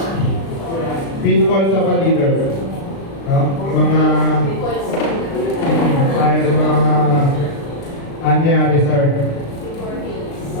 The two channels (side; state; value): right; late; 36 ms